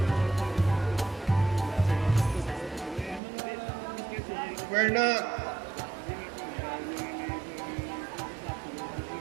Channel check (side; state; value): left; drops out; at 3.2 s